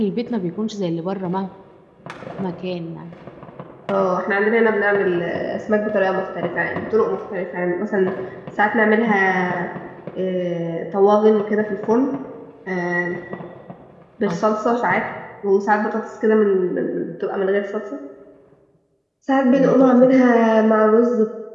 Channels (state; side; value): identical; both; correlation 1.00